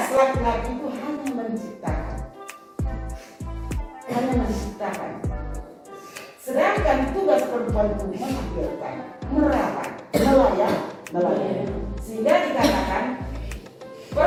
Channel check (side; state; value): both; identical; correlation 1.00